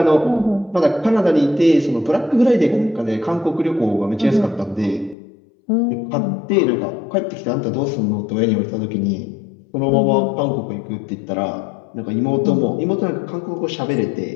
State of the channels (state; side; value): drops out; right; at 5.2 s